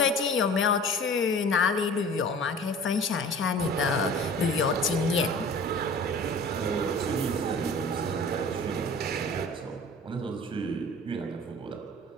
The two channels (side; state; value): both; normal; correlation 0.42